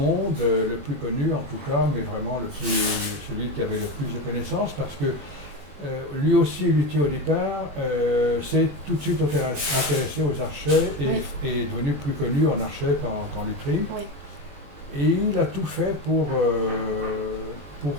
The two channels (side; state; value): left; late; 21 ms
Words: le plus connu en tout cas, mais vraiment celui qui avait le plus de connaissances, parce que lui aussi, luthier au départ, s'est tout de suite intéressé aux archets et est devenu plus connu en archet qu'en lutherie. Oui. Et il a tout fait pour